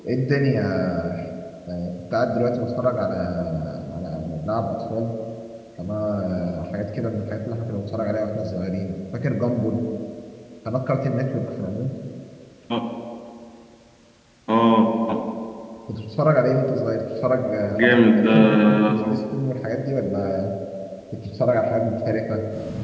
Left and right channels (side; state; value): both; identical; correlation 1.00